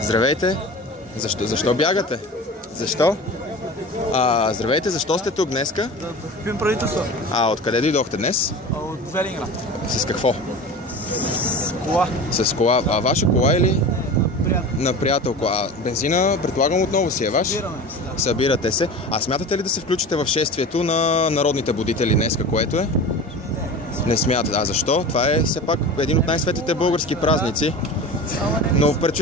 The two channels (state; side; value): normal; both; correlation 0.33